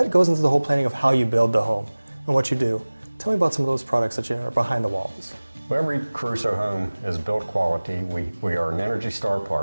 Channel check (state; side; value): inverted; both; correlation -1.00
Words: goes into the whole planning of how you build the home and what you do. Tell me about some of those products that are behind the walls. Well, every Caruso home is built quality. We are an Energy Star